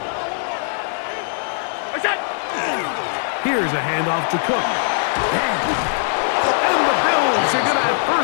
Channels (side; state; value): right; silent; digital silence